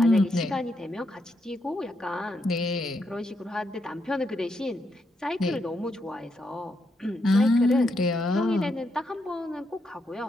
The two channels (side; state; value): both; normal; correlation 0.80